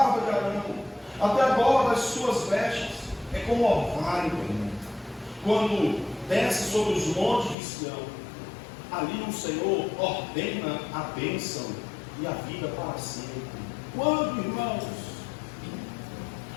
de Arão, até a borda das suas vestes. É como orvalho, quando desce sobre os montes de Sião. Ali o Senhor ordena a bênção e a vida para sempre. Quando, irmãos?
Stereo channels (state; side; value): drops out; right; at 7.6 s